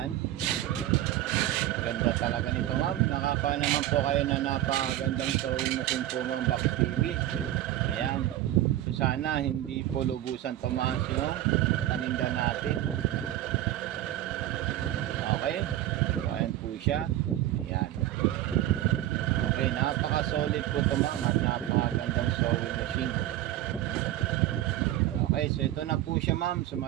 Ganda talaga nito, Ma'am. Nakaka naman po kayo na napakagandang sewing machine po, Ma'am Box TV. Ayan. So sana hindi po lubusan tumaas yung paninda natin. Okay. So ayan po siya. Ayan. Okay, napaka-solid po ito, Ma'am, at napakagandang sewing machine. Okay, so ito na po siya, Ma'am. So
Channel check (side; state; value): left; quieter; 13.7 dB